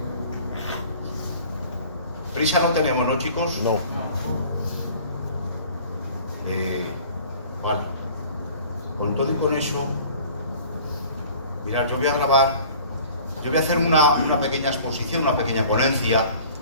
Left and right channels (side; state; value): both; inverted; correlation -0.48